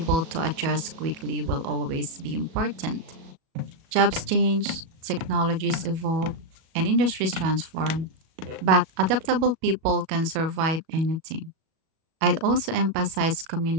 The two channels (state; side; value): late; left; 37 ms